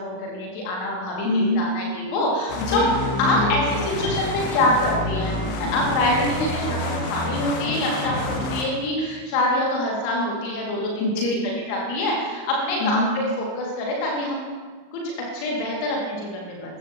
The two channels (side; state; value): right; late; 38 ms